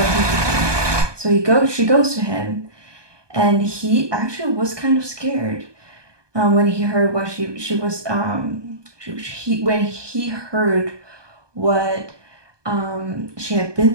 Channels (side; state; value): left; late; 1.2 ms